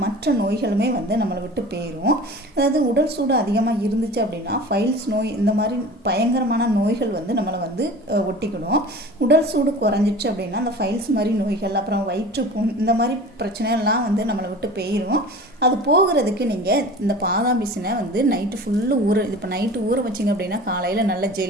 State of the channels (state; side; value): normal; both; correlation 0.39